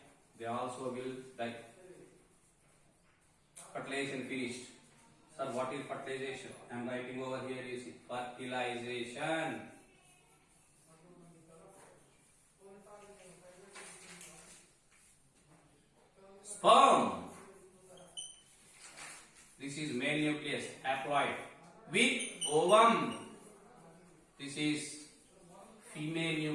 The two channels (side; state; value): both; identical; correlation 1.00